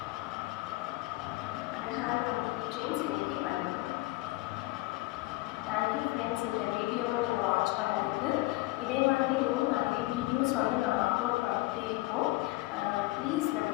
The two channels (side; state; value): right; quieter; 20.1 dB